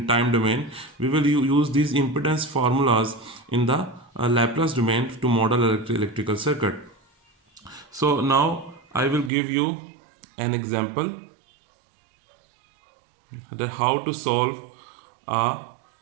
time domain. We will use these impedance formulas in the Laplace domain to model electrical circuit. So now I will give you an example that how to solve a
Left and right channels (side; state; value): left; drops out; at 9.3 s